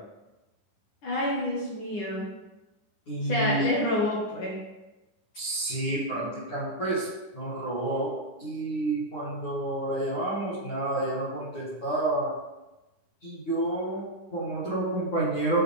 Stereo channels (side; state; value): right; late; 9.7 ms